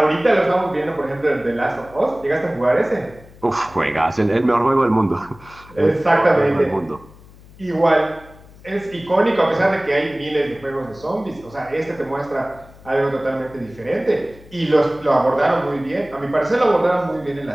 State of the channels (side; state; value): left; noise; hum, 22 dB below the sound